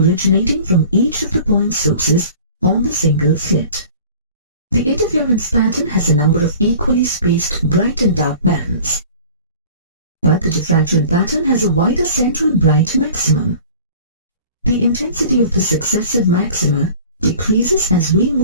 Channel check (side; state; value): both; inverted; correlation -0.44